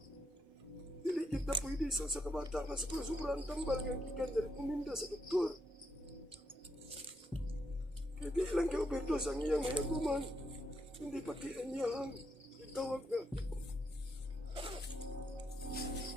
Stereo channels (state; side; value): normal; both; correlation 0.79